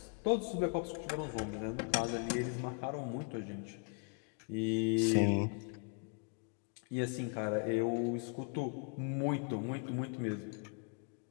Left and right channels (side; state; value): right; quieter; 39.4 dB